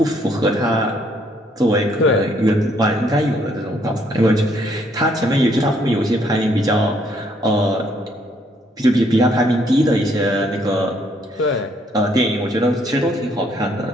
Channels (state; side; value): normal; both; correlation 0.68